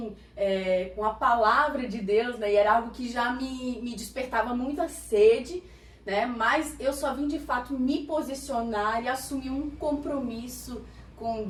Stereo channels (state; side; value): identical; both; correlation 1.00